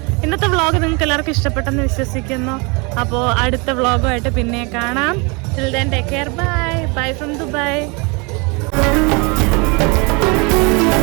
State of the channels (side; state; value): left; quieter; 29.8 dB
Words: ഇന്നത്തെ വ്ളോഗ് നിങ്ങൾക്ക് എല്ലാവർക്കും ഇഷ്ടപ്പെട്ടെന്ന് വിശ്വസിക്കുന്നു. അപ്പോൾ അടുത്ത വ്ളോഗുമായിട്ട് പിന്നെ കാണാം. Till then take care. Bye from Dubai.